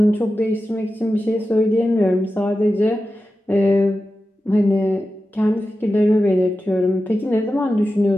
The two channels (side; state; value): both; normal; correlation 0.92